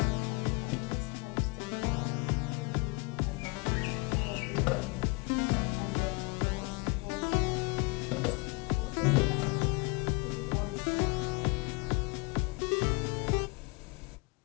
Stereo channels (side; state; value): right; quieter; 28.7 dB